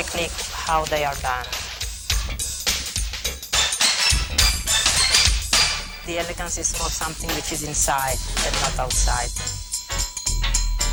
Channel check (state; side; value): identical; both; correlation 1.00